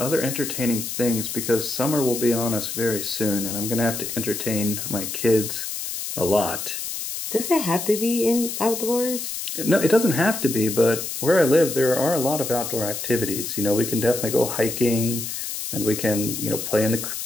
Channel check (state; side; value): noise; left; hiss, 5 dB below the sound